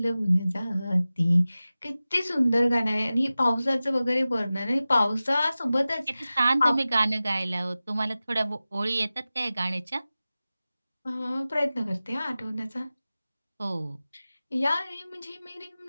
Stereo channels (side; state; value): both; inverted; correlation -0.96